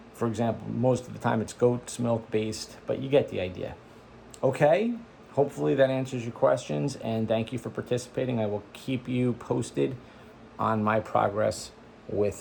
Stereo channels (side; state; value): both; identical; correlation 1.00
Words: for example, most of the time it's goat's milk based, but you get the idea. Okay, hopefully that answers your questions, and thank you for participating. I will keep you posted on my progress